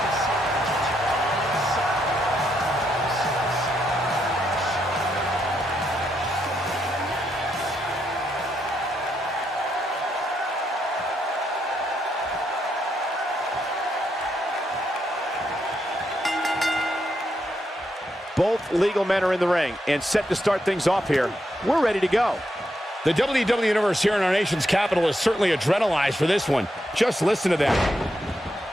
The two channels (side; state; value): both; normal; correlation 0.80